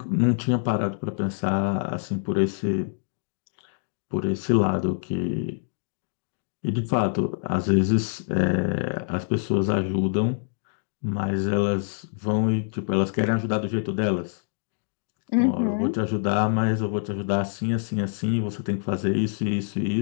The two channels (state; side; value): silent; right; digital silence